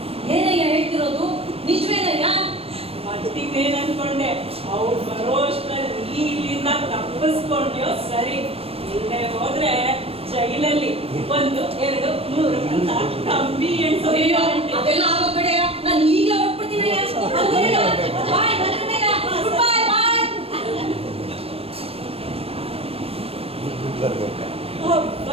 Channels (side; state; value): left; late; 0.28 ms